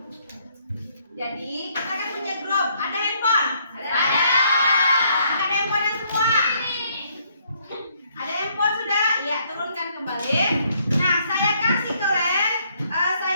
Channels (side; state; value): both; inverted; correlation -0.69